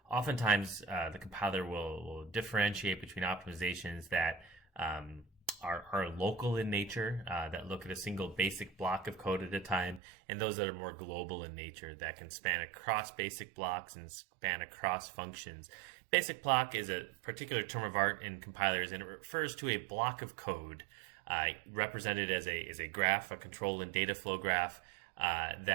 Oftentimes, the compiler will differentiate between optimizations that are local in nature, that look at a single basic block of code at a time, and those that are more global in nature that can span across basic blocks and span across functions. Basic block is a particular term of art in compilers, and it refers to a block of code represented as a graph, a control and data flow graph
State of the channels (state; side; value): drops out; left; at 10.0 s